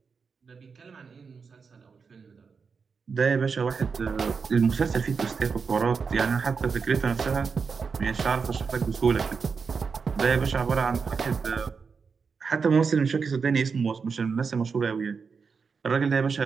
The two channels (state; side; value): quieter; left; 5.4 dB